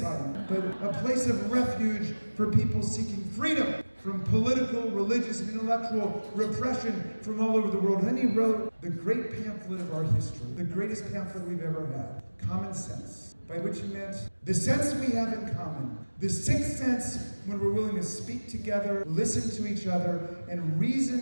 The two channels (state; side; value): inverted; both; correlation -1.00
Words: but a place of refuge for people seeking freedom from political, religious, and intellectual repression from all over the world. And then he wrote the great pamphlet of our history, the greatest pamphlet we've ever had, Common Sense, by which he meant the sense we have in common, the sixth sense when we're willing to speak together, listen to each other, and